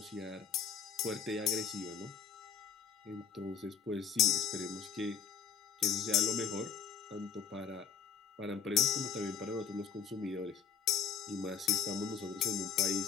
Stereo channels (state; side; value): quieter; right; 7.1 dB